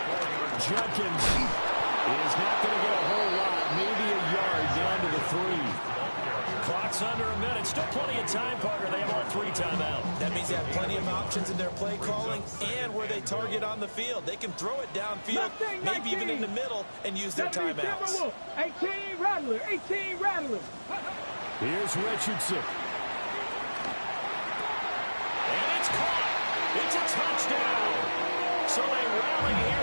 Jenkins is not going to get a whole lot. Maybe a yard down to the 3. Clock's under a minute. Still plenty of time, Parker. They have all 3 timeouts. That means they have plenty of options in their play calling and where they target on the field. They can throw it downfield, maybe even in the middle, and use their timeouts. 18 Rattler, 18 Rattler. Here's Richardson. And it's caught. It's a touchdown. So they rally here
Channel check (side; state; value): both; inverted; correlation -1.00